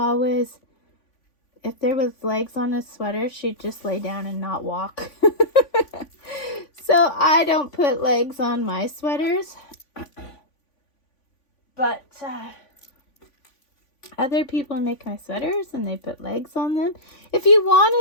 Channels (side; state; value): right; late; 3.5 ms